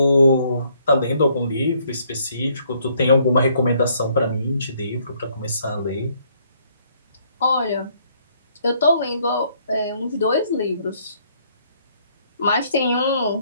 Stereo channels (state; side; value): inverted; both; correlation -0.66